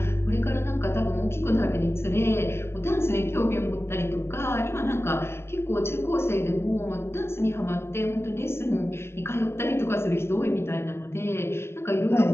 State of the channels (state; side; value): late; right; 0.12 ms